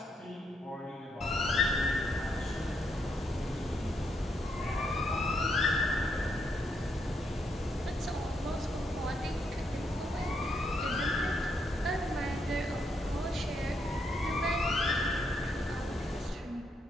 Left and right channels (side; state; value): both; normal; correlation 0.77